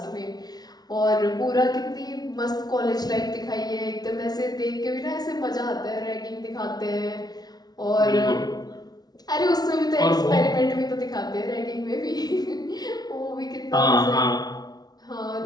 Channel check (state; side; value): late; right; 0.19 ms